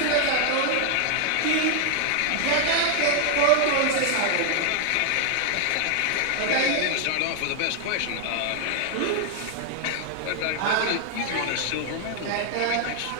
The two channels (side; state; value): both; different; correlation 0.00